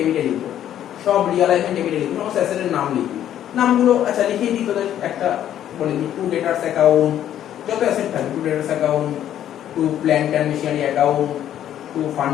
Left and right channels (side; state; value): right; quieter; 11.0 dB